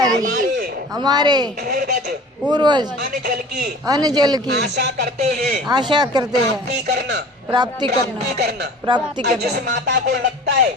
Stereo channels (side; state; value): both; normal; correlation 0.43